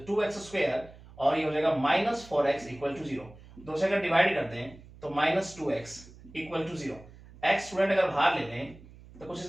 2x स्क्वायर और ये हो जाएगा माइनस 4x इक्वल टू 0। दो से अगर डिवाइड करते हैं तो minus 2x equal to 0। x student अगर बाहर ले लें तो कुछ इस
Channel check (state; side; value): noise; right; hum, 21 dB below the sound